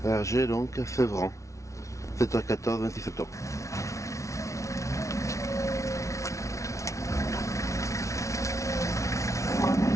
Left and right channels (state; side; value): late; right; 0.14 ms